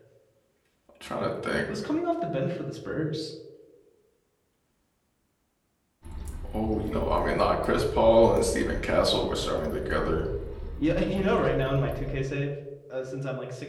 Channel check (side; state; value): both; identical; correlation 1.00